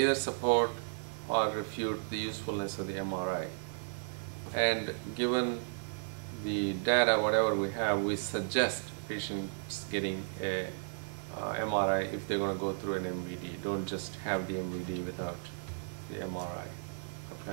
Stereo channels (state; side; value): silent; left; 55 dB below the other